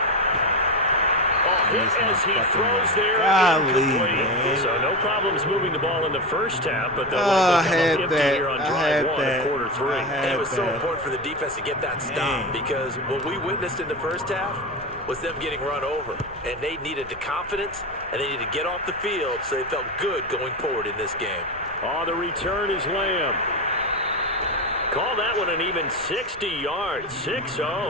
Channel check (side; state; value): right; noise; rumble, 20 dB below the sound